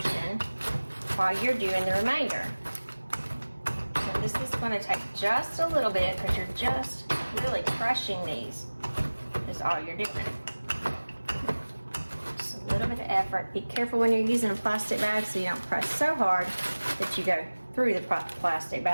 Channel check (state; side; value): inverted; both; correlation -1.00